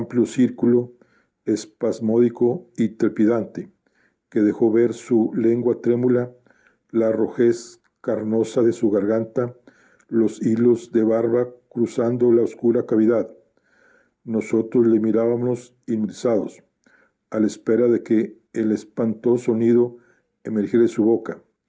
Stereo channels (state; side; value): identical; both; correlation 1.00